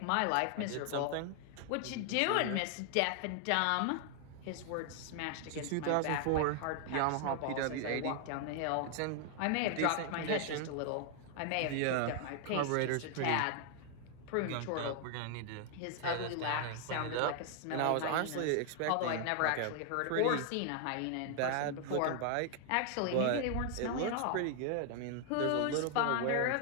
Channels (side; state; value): both; different; correlation 0.00